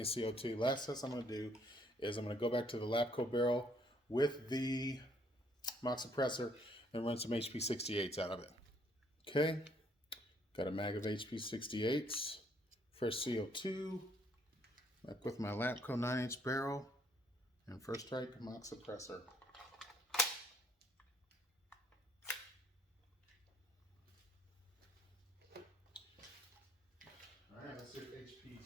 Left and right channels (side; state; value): both; normal; correlation 0.66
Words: CO2. Last test I'm going to do is I'm going to go back to the Labco barrel with the mock suppressor and run some HP68s out of it. Okay, got a mag of HP68s, fresh CO2, back with my Labco 9-inch barrel, and first strike mock suppressor. Alright, let's see if